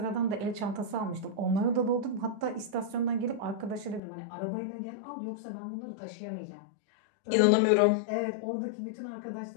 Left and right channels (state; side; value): drops out; right; at 4.0 s